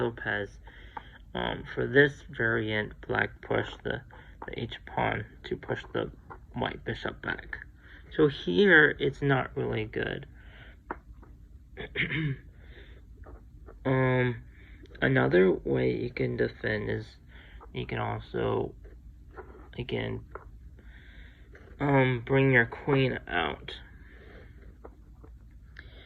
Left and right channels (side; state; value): both; identical; correlation 1.00